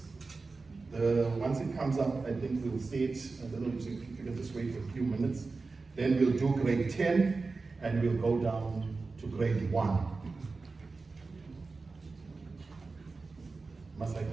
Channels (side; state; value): left; quieter; 4.0 dB